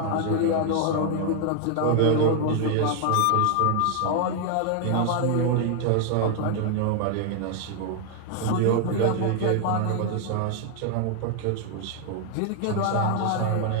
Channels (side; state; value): both; different; correlation 0.00